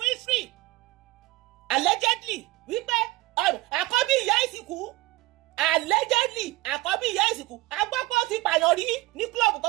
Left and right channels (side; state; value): left; quieter; 19.8 dB